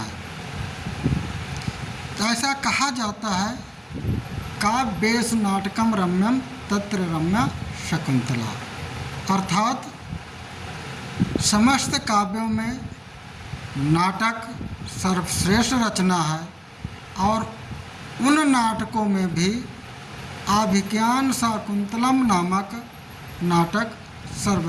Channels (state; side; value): identical; both; correlation 1.00